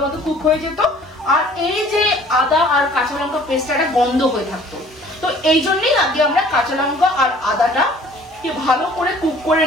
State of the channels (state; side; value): normal; both; correlation 0.53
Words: মতো কুক হয়ে যেত, আর এই যে আদা আর কাঁচা লঙ্কা পেস্টটা গন্ধ হয়ে থাকতো। তো এই জন্যই আগে আমরা কাঁচা লঙ্কা আর আদাটা ভালো করে কুক করে